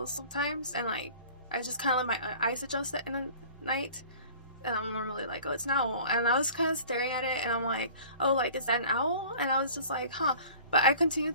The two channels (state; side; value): inverted; both; correlation -0.46